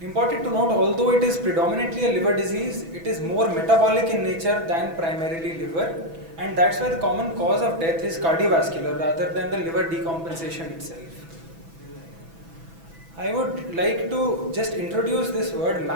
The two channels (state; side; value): late; left; 6.1 ms